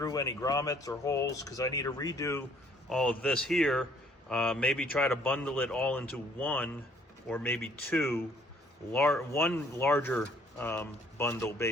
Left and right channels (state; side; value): normal; both; correlation 0.62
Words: any grommets or holes because I need to redo all of this here. Maybe try to bundle it all into one or maybe two, one larger bundle